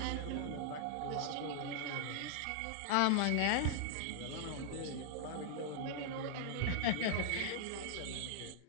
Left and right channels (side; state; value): both; different; correlation -0.01